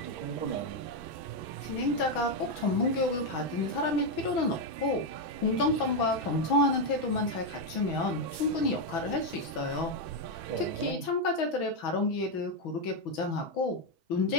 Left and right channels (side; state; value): right; late; 6.1 ms